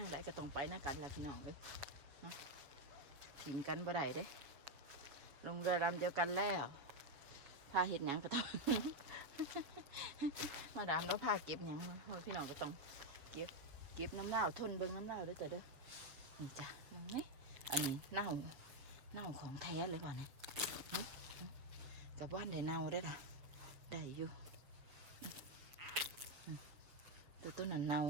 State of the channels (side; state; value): left; late; 7.3 ms